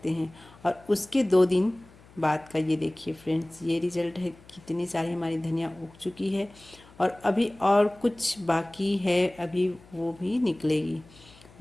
हैं। और उसके 2 दिन बाद का ये देखिए फ्रेंड्स, ये रिज़ल्ट है। कितनी सारी हमारी धनिया उग चुकी है और अभी और कुछ बाकी है, अभी वो भी निकलेगी,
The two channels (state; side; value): noise; left; hum, 24 dB below the sound